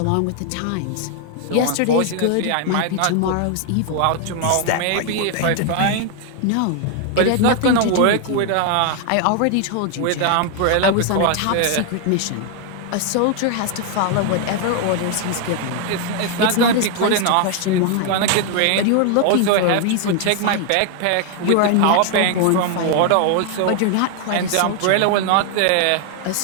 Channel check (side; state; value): both; different; correlation 0.00